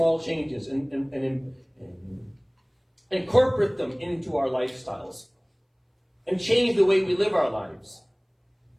changes and incorporate them into our lifestyles and change the way we live our lives.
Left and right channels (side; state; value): both; identical; correlation 1.00